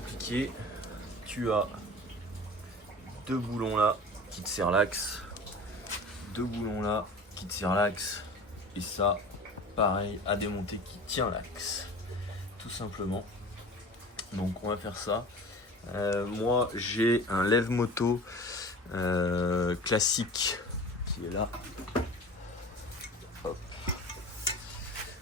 tu as deux boulons là qui te serrent l'axe, deux boulons là qui te serrent l'axe, et ça pareil à démonter qui tient l'axe, tout simplement. Donc on va faire ça. Moi j'ai un lève-moto classique qui est là. Hop.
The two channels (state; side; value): normal; both; correlation 0.38